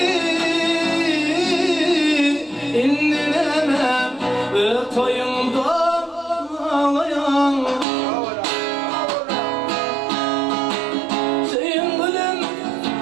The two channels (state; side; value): drops out; left; at 7.9 s